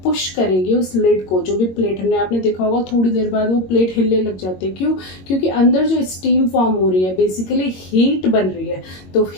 पुश करेगी उस लिड को. जो भी प्लेट हमने, आपने देखा होगा थोड़ी देर बाद वो प्लेट हिलने लग जाती है. क्यों? क्योंकि अंदर जो स्टीम फॉर्म हो रही है, बेसिकली हीट बन रही है. तो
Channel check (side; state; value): right; late; 22 ms